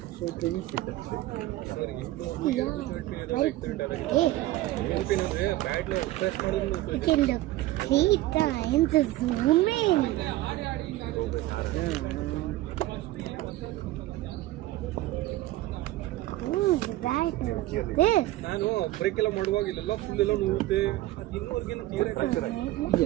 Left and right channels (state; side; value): quieter; left; 16.6 dB